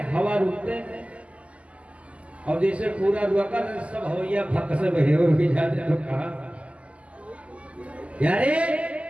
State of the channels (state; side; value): late; left; 0.063 ms